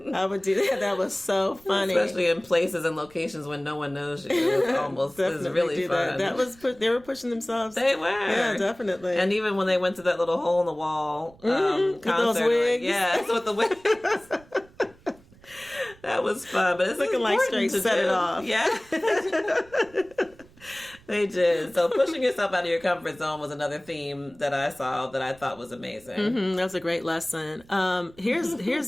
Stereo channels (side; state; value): right; noise; rumble, 26 dB below the sound